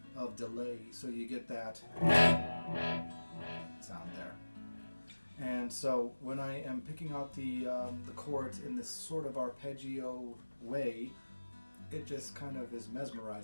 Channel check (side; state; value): both; inverted; correlation -1.00